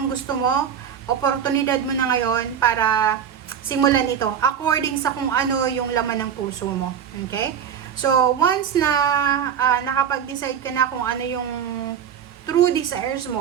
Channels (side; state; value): left; quieter; 8.3 dB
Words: gusto mo, oportunidad mo na ngayon para simulan ito according sa kung ano yung laman ng puso mo. Okay? So, once na nakapag-decide ka na kung ano yung true desires